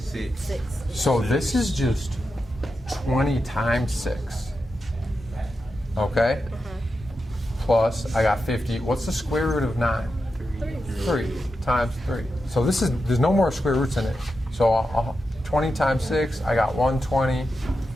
So this is just 20 times 6. Okay? Plus, I got 50. What's the square root of 9? 3 times 3. So there's no more square roots in it. So 20 times 6, I got 120.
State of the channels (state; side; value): normal; both; correlation 0.89